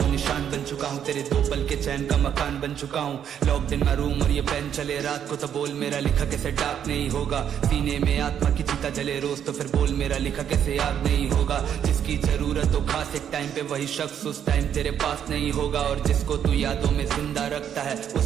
निशान बन चुका हूँ, तेरे दो पल के चैन का मकान बन चुका हूँ। लॉक्ड इन माय रूम और ये पेन चले रात को, तो बोल मेरा लिखा कैसे डार्क नहीं होगा। सीने में आत्मा की चिता जले रोज, तो फिर बोल मेरा लिखा कैसे याद नहीं होगा। जिसकी जरूरत हो खास एक टाइम पे वही शख्स उस टाइम तेरे पास नहीं होगा। और जिसको तू यादों में जिंदा रखता है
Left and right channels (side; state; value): left; quieter; 9.0 dB